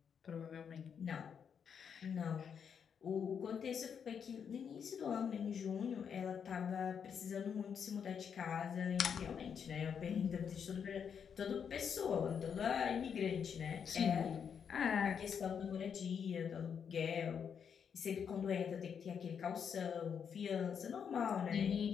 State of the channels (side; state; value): right; quieter; 7.2 dB